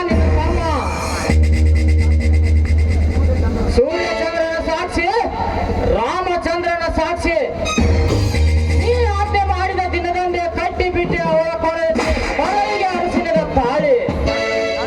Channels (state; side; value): identical; both; correlation 1.00